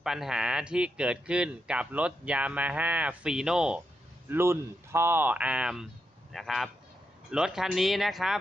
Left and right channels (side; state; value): both; normal; correlation 0.84